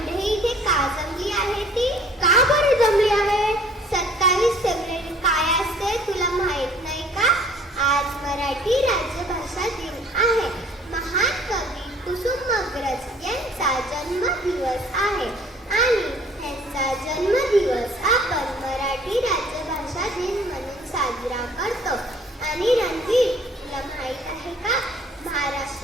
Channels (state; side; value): normal; both; correlation 0.55